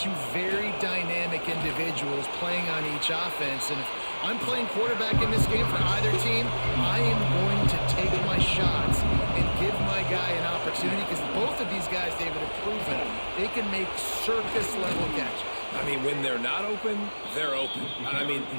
very dynamic individuals playing on each offense, and if I'm playing quarterback in this game for either team, I am going to take my shots and give my guy an opportunity, because both of these guys, David, have proven they can make circus-level catches. I mean, when they're not open, they're open. I mean,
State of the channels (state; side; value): inverted; both; correlation -1.00